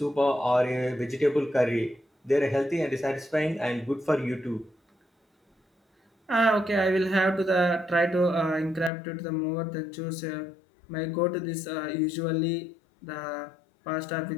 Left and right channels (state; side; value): drops out; right; at 8.9 s